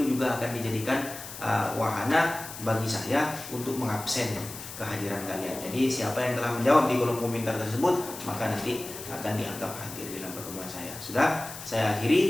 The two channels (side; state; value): left; noise; hiss, 12 dB below the sound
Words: juga akan dijadikan wahana bagi saya untuk mengabsen kehadiran kalian. Jadi siapa yang telah menjawab di kolom komentar tersebut, maka nanti akan dianggap hadir dalam pertemuan saya. Sudah, saya